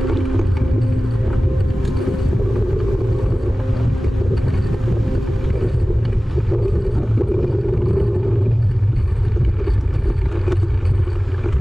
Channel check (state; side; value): normal; both; correlation 0.97